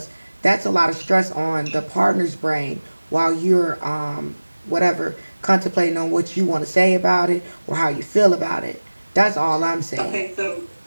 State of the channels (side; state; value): both; inverted; correlation -1.00